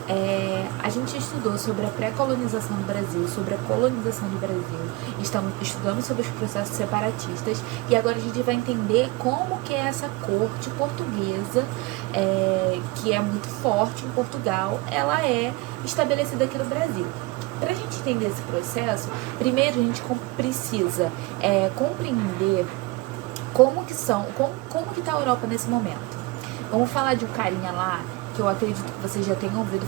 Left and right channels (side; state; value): left; quieter; 22.6 dB